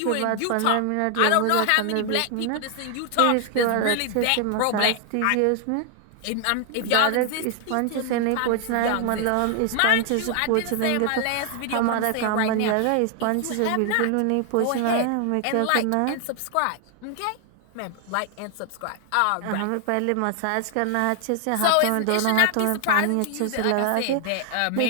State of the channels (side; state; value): both; different; correlation 0.00